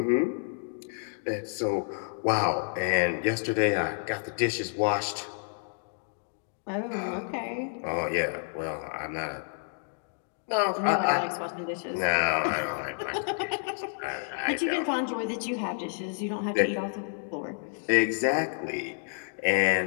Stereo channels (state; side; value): silent; right; digital silence